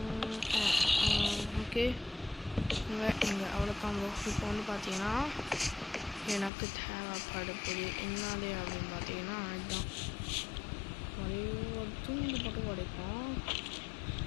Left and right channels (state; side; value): drops out; right; at 6.5 s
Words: ஓகே இங்கே அவ்வளோதான் ப்ரோ. இப்போ வந்து பார்த்தீங்கன்னா எனக்கு தேவைப்படுது என்னது அப்படின்னு பார்த்தீங்கன்னா அதுதான் ஒரு துண்டு மட்டும் உடைப்போம்.